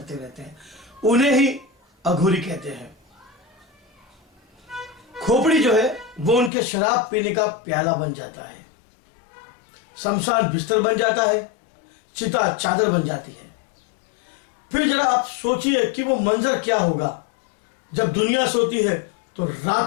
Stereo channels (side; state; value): right; drops out; at 6.5 s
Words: रहते हैं। उन्हें ही अघोरी कहते हैं। खोपड़ी जो है वो उनके शराब पीने का प्याला बन जाता है, शमशान बिस्तर बन जाता है, चिता चादर बन जाती है। फिर जरा आप सोचिए कि वो मंजर क्या होगा जब दुनिया सोती है तो